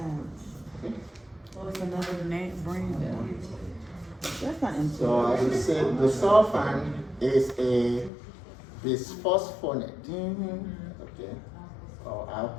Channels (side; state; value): right; drops out; at 8.1 s